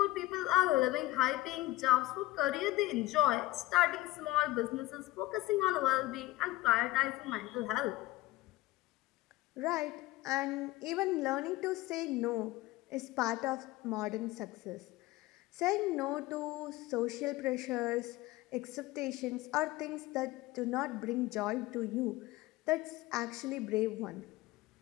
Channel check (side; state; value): right; quieter; 17.9 dB